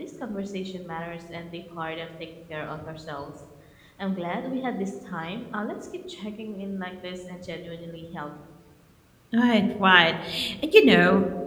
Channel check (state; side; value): identical; both; correlation 1.00